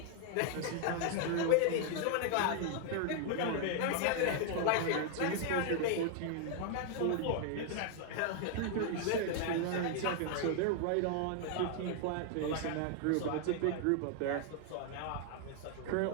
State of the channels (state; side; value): different; both; correlation 0.00